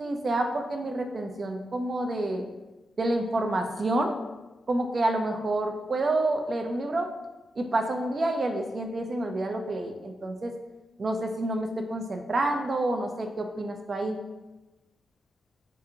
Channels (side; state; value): both; normal; correlation 0.87